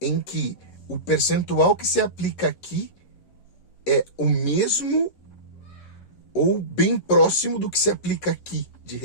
em que o percentual que se aplica aqui é o mesmo ou bem próximo do que se aplica aqui de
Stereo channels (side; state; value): right; late; 11 ms